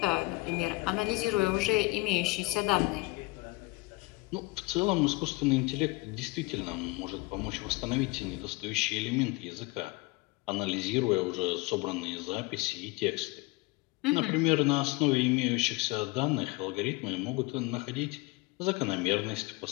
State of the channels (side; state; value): right; quieter; 23.6 dB